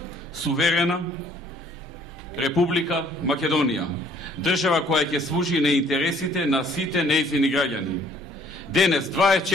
суверена Република Македонија, држава која ќе служи на интересите на сите нејзини граѓани. Денес,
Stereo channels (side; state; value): both; normal; correlation 0.60